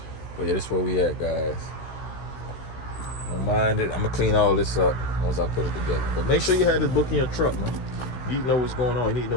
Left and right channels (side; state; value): right; late; 16 ms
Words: But yeah, this is where we at, guys. Don't mind it. I'm gonna clean all this up once I put it together. But make sure you have this book in your truck, man. You need to know what's going on. You need to